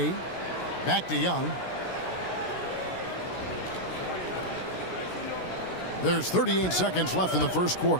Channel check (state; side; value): late; right; 16 ms